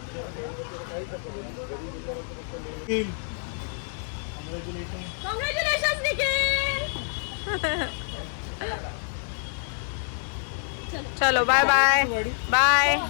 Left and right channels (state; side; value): silent; right; 60 dB below the other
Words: कॉंग्रॅच्युलेशन्स निखिल. चलो बाय बाय बाय.